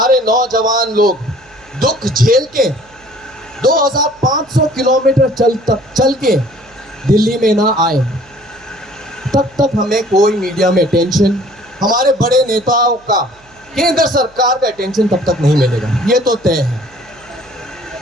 नौजवान लोग दुख झेल के 2500 किलोमीटर चल के दिल्ली में ना आए, तब तक हमें कोई मीडिया में अटेंशन, हमारे बड़े नेताओं का, केंद्र सरकार का अटेंशन तब तक नहीं मिलेगा। ये तो तय है।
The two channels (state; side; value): noise; right; hum, 30 dB below the sound